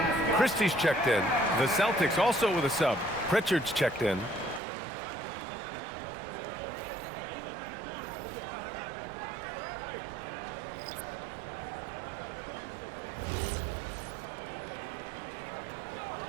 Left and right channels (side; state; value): left; drops out; at 4.6 s